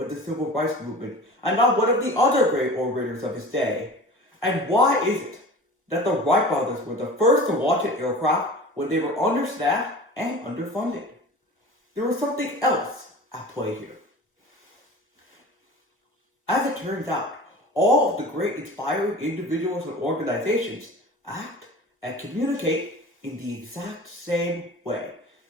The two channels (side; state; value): both; normal; correlation 0.37